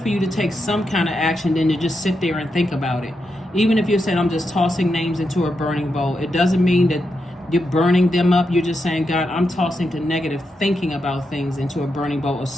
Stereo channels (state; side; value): normal; both; correlation 0.85